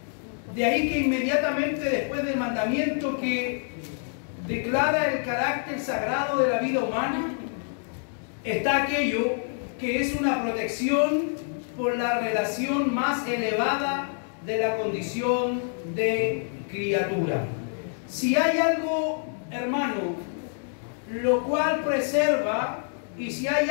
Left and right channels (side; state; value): right; silent; 60 dB below the other